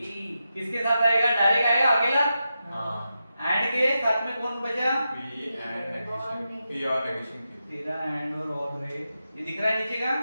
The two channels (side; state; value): both; inverted; correlation -0.89